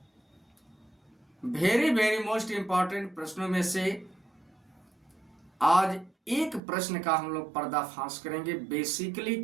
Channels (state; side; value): drops out; left; at 6.6 s